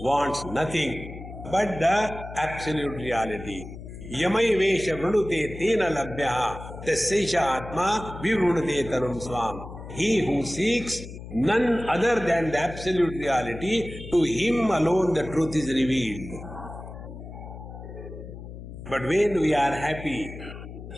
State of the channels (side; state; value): left; noise; hum, 12 dB below the sound